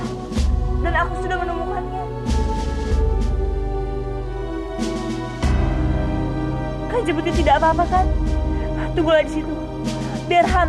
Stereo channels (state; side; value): identical; both; correlation 1.00